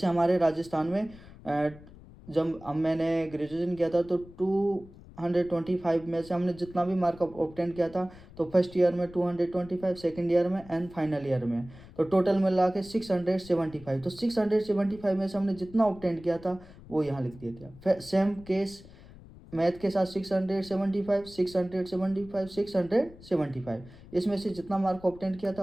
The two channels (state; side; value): noise; left; rumble, 20 dB below the sound